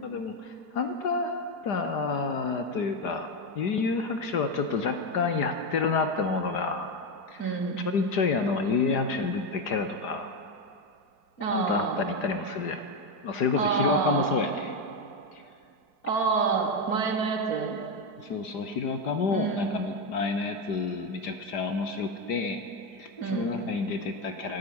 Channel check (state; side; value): late; right; 4.9 ms